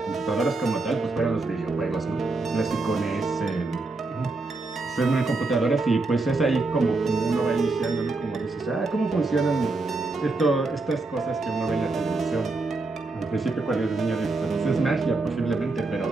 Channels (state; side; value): quieter; left; 3.4 dB